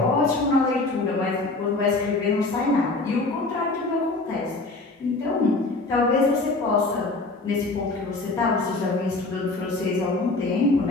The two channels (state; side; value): quieter; right; 3.2 dB